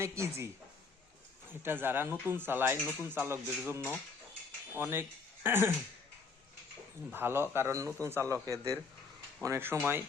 ইজি। এটা যারা নতুন চালায়, নতুন চালকদের জন্য অনেক ভালো। কারণ নতুন চালকদের অনেক সময়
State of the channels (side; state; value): right; quieter; 4.6 dB